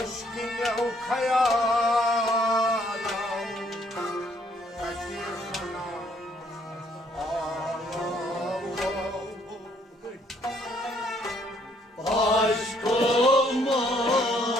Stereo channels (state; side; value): normal; both; correlation 0.66